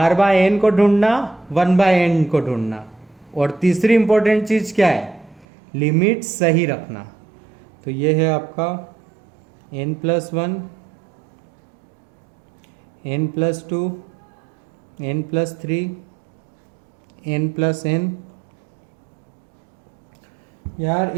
बाय एन को ढूंढना, 1 बाय एन को ढूंढना, और तीसरी इंपॉर्टेंट चीज क्या है? लिमिट सही रखना। तो ये है आपका n plus 1, n plus 2, n plus 3, n plus n। यार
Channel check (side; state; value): left; drops out; at 5.5 s